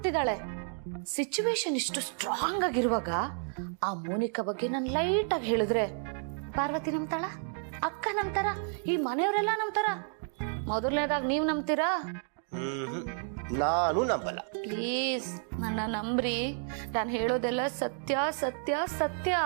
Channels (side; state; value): left; silent; 57 dB below the other